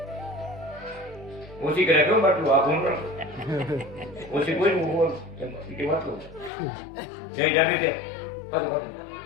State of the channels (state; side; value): drops out; right; at 6.5 s